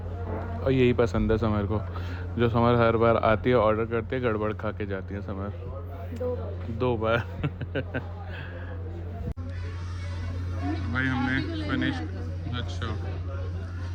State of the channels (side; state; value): both; identical; correlation 1.00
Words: और यही पसंद है समर को, जो समर हर बार आती है ऑर्डर करती है, गड़बड़ खा के जाती है समर 2 बार। भाई हमने फिनिश, अच्छा